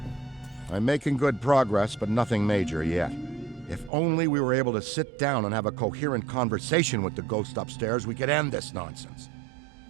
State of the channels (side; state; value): left; drops out; at 3.9 s